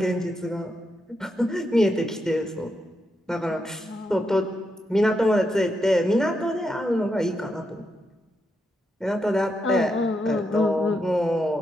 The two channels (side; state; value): both; normal; correlation 0.83